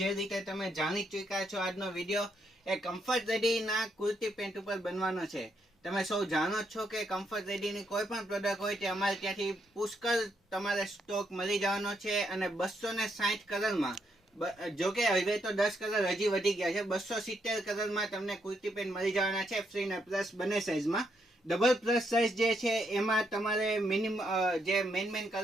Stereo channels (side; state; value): both; normal; correlation 0.77